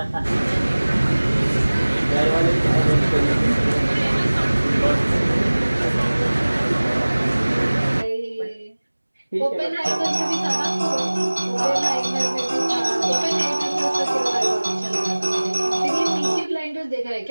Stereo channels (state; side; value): inverted; both; correlation -1.00